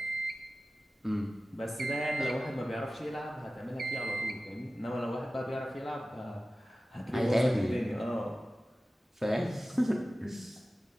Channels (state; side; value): normal; both; correlation 0.96